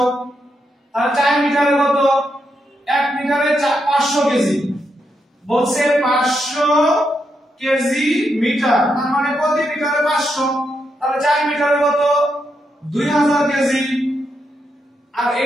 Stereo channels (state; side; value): normal; both; correlation 0.82